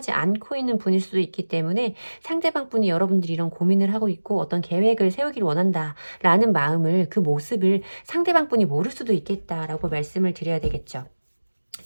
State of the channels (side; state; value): both; inverted; correlation -1.00